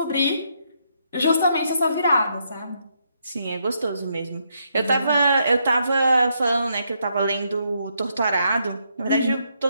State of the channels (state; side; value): inverted; both; correlation -0.77